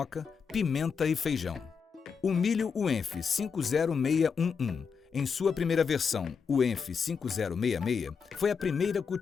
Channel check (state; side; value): quieter; right; 6.0 dB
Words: pimenta e feijão. O milho UENF 50611, em sua primeira versão, UENF 5066, foi a primeira